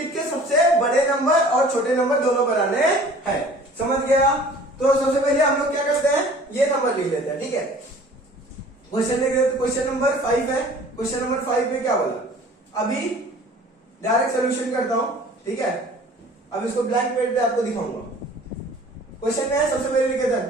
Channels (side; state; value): both; normal; correlation 0.48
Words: के सबसे बड़े नंबर और छोटे नंबर दोनों बनाने हैं। समझ गया? तो सबसे पहले हम लोग क्या करते हैं, ये नंबर लिख लेते हैं, ठीक है। क्वेश्चन लिख लेते, क्वेश्चन नंबर 5 है। क्वेश्चन नंबर 5 में क्या बोला, अभी डायरेक्ट सोल्यूशन करता हूं, ठीक है। अब इसको ब्लैंक पेज पे आपको दिखाऊंगा। क्वेश्चन में है, सबसे पहले लिख लेते